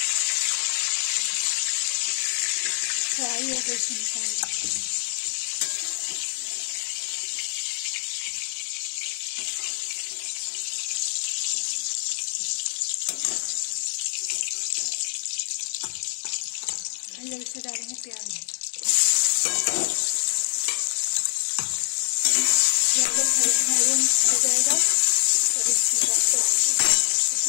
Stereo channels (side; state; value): right; silent; 61 dB below the other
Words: फ्राई हो गई, इसको निकाल देंगे। जब इसमें डालेंगे प्याज, मैरून हो जाएगा और इसमें डालकर